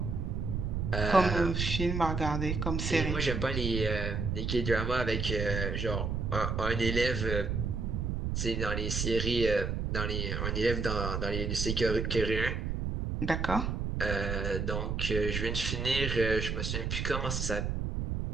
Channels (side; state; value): right; noise; rumble, 1 dB below the sound